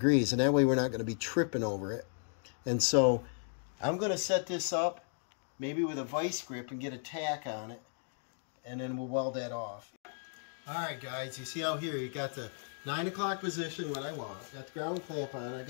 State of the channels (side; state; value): right; silent; digital silence